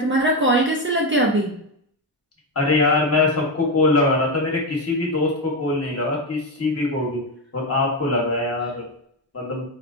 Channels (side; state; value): both; normal; correlation 0.09